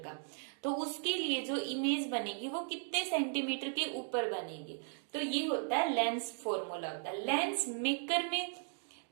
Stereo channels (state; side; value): silent; left; 53 dB below the other